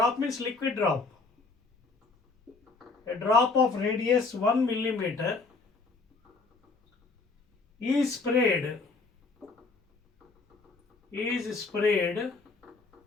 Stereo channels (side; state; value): right; quieter; 4.0 dB